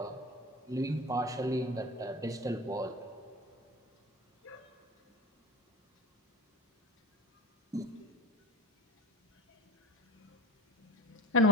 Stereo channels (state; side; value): normal; both; correlation 0.32